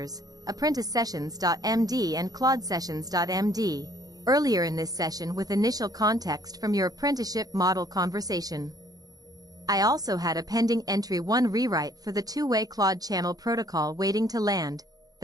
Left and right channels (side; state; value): left; late; 0.18 ms